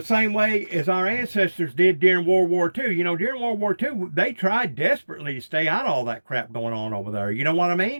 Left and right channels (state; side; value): inverted; both; correlation -1.00